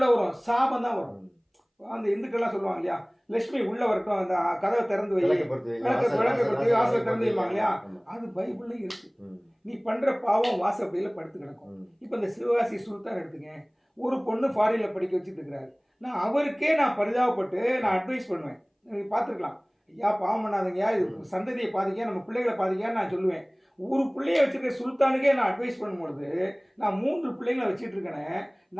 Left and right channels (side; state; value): both; identical; correlation 1.00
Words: வரும்? சாபம் தான் வரும். அந்த இந்துக்கள்லாம் சொல்லுவாங்க இல்லையா, லட்சுமி உள்ளே வரட்டும், அந்த கதவை திறந்து வை, விளக்கப்படுத்தி வாசலை திறந்து வைப்பாங்க இல்லையா, அது பைபிள்லையும் இருக்கு. நீ பண்ணுற பாவம் வாசப்படியில் படுத்து கிடக்கும். இப்போ இந்த சிவகாசி சுல்தான் எடுத்துங்க, ஒரு பொண்ணு ஃபாரினில் படிக்க வச்சுட்டு இருக்கிறாரு. நான் அவருக்கே பரிதாபப்பட்டு நான் அட்வைஸ் பண்ணுவேன். நீங்கள் பார்த்துருக்கலாம், ஐயா பாவம் பண்ணாதீங்க, இது சந்ததியை பாதிக்க, நம்ம பிள்ளைகளை பாதிக்கான்னு நான் சொல்லுவேன். ஒரு பிள்ளைய வச்சுருக்க சுல்தானுக்கே நான் அட்வைஸ் பண்ணும்பொழுது நான் 3 பிள்ளைங்களை வச்சுட்டு இருக்கேனே,